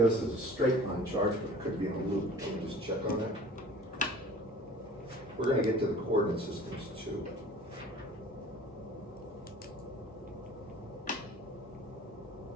is a straight line charge, but it could be in a loop. Let me just check on that. We're going to get to the coordinate systems too.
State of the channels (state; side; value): normal; both; correlation 0.45